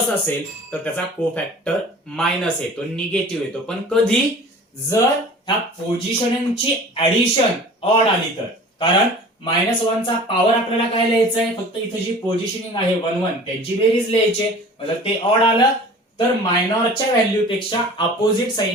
असेल तर त्याचा कोफॅक्टर मायनस येतो, निगेटिव्ह येतो. पण कधी जर ह्या पोझिशनिंगची ऍडिशन ऑड आली तर, कारण -1 चा पॉवर आपल्याला काय लिहायचंय, फक्त इथे जी पोझिशनिंग आहे 1 1 त्यांची बेरीज लिहायची. जर ते ऑड आलं तर मायनॉरच्या व्हॅल्यू पेक्षा अपोजिट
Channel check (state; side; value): normal; both; correlation 0.43